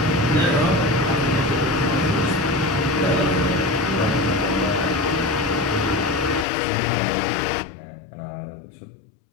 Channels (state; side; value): drops out; right; at 6.5 s